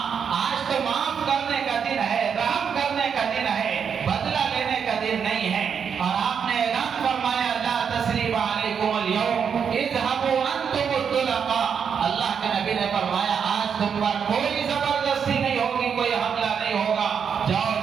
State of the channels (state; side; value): quieter; left; 7.0 dB